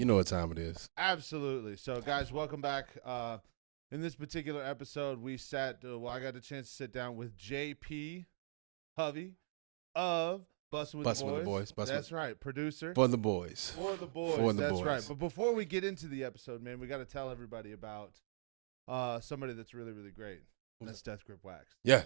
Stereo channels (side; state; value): left; silent; digital silence